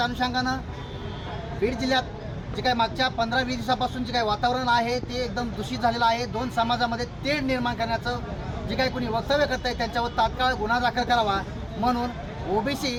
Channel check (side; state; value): both; identical; correlation 1.00